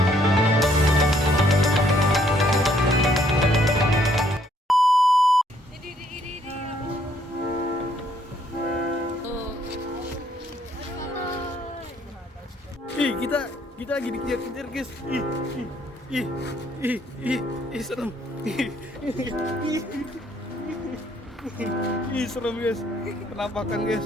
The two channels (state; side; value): normal; both; correlation 0.67